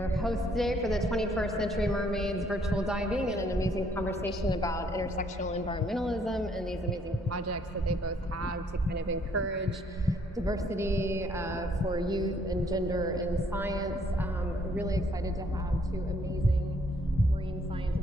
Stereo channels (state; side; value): normal; both; correlation 0.66